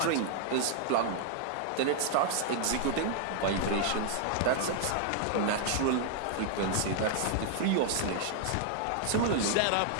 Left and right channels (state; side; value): different; both; correlation 0.00